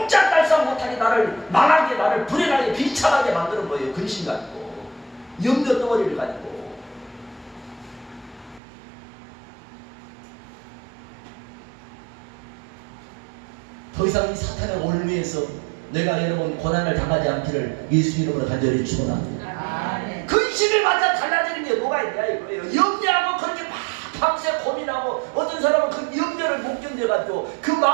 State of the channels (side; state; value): left; drops out; at 8.6 s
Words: 못하게 나를 망하게 나를 불행하게 비참하게 만드는 거예요. 근심 가지고 염려 덩어리를 가지고. 더 이상 이 사탄의 올무에서 내가 여러분 고난을 당하지 않기를 예수 이름으로 간절히 축원합니다. 근심을 맞아 달라지는 게 뭐가 있냐 이거예요. 염려하고 그렇게 막 밤새 고민하고 어떤 사람은 그 염려를 못 견뎌가지고 그